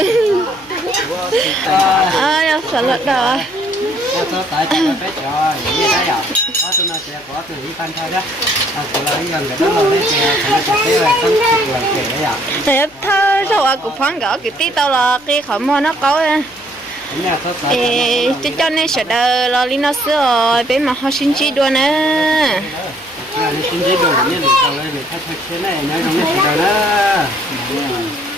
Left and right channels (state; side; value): noise; left; hum, 28 dB below the sound